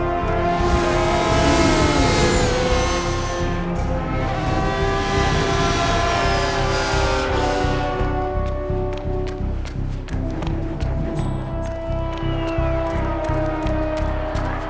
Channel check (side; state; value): both; identical; correlation 1.00